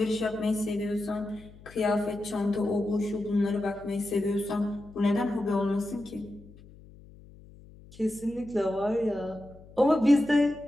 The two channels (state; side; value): noise; left; hum, 21 dB below the sound